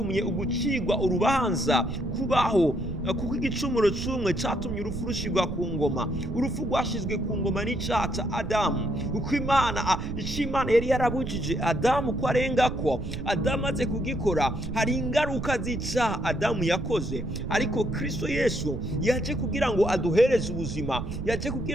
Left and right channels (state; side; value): noise; right; rumble, 6 dB below the sound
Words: ugucigwa urubanza kubaho, kuko igicumuro c'umwe catumye urupfu rushirwa ku ngoma. Urupfu rwashizwe ku ngoma n'icyaha ca Adamu, uko Imana yari yarabujije Adamu ko arengako. Adamu aze kugikora, hari ingaruka z'icaha Adamu yakoze, ariko Kristo Yesu yaje kugira ngo aduhereze ubuzima, yaje